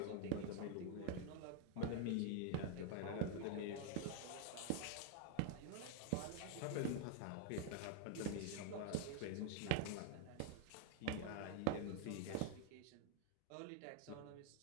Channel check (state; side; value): different; both; correlation 0.01